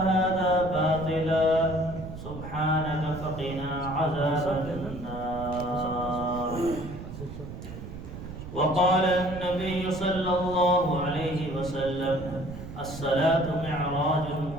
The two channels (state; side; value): noise; right; rumble, 11 dB below the sound